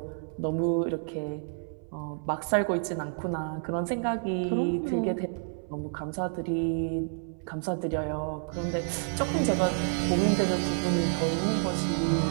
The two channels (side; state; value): left; silent; 58 dB below the other